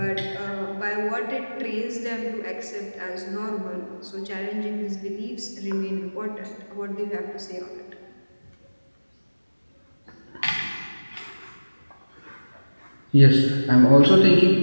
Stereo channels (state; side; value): inverted; both; correlation -1.00